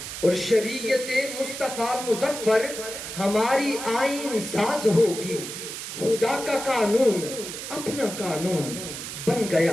اور شریعت مصطفیٰ مظفر ہماری آئین ساز ہوگی، خدا کا قانون اپنا قانون بن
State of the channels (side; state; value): right; noise; hiss, 8 dB below the sound